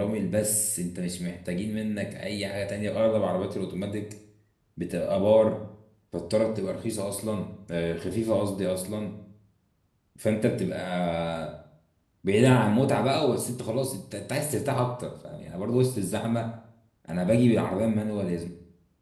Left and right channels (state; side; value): identical; both; correlation 1.00